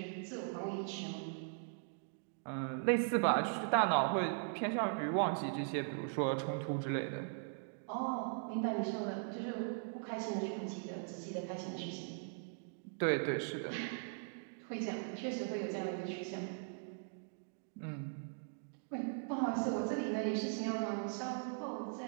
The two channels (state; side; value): silent; left; digital silence